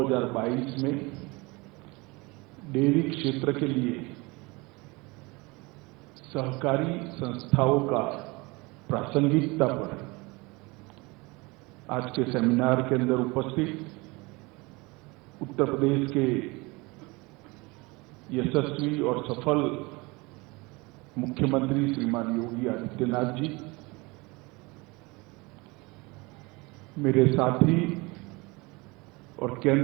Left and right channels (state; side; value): quieter; left; 25.1 dB